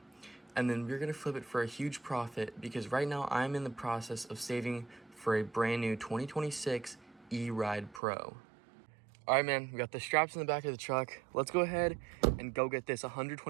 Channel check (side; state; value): left; drops out; at 8.0 s